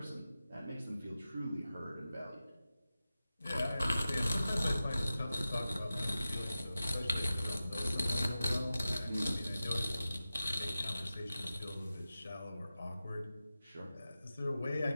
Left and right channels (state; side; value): inverted; both; correlation -0.93